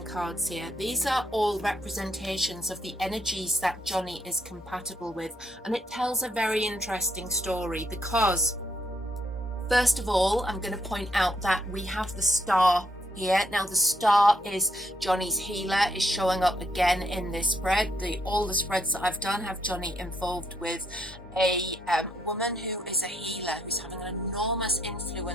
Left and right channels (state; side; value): normal; both; correlation 0.75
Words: cards here. These are all representations of the energies that Johnny is compatible with, and it tells a very interesting story because, first of all, I'm going to point out that we have the star here. Now, the star is Johnny's healer, is showing up again in this spread. All the spreads that I've done have Johnny involved with a woman who is a healer, who's having an enormous